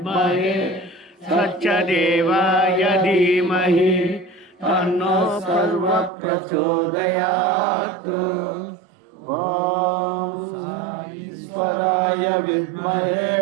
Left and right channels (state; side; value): drops out; left; at 6.1 s